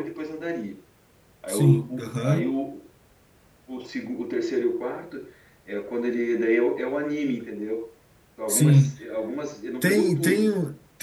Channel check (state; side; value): identical; both; correlation 1.00